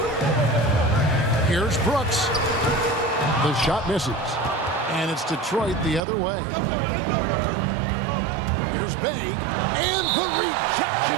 Here's Brooks. The shot misses. And it's Detroit the other way. Here's Bay. And the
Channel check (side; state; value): left; drops out; at 6.0 s